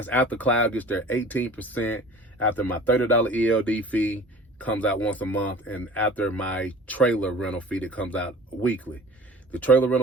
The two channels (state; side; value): normal; both; correlation 0.43